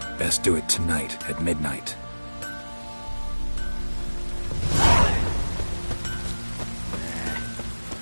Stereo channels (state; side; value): inverted; both; correlation -1.00